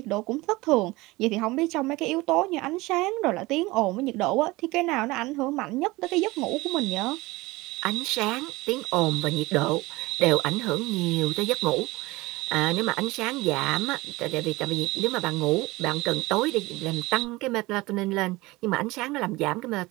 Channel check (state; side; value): quieter; left; 21.2 dB